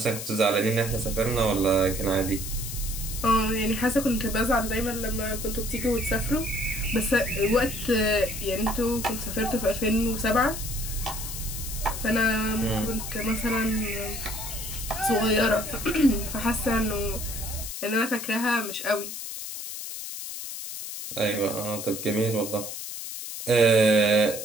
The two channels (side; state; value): left; noise; hiss, 7 dB below the sound